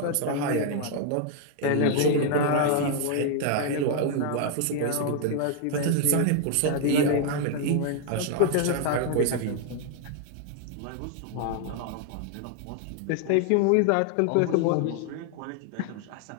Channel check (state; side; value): different; both; correlation 0.00